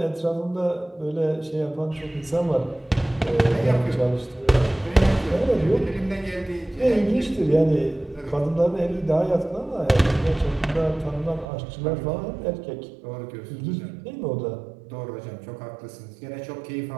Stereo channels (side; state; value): left; drops out; at 11.5 s